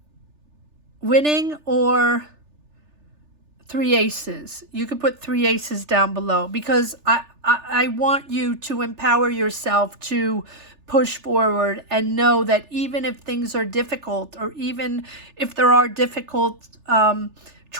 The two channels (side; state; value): left; late; 3.4 ms